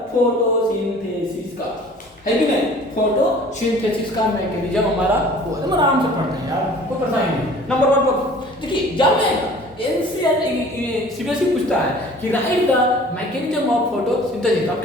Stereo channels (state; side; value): normal; both; correlation 0.48